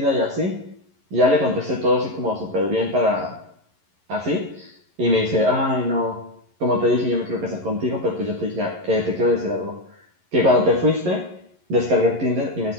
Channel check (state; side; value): late; left; 11 ms